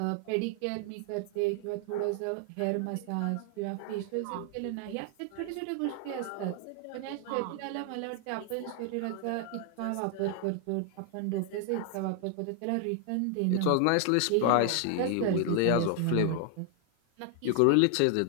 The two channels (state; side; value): different; both; correlation 0.00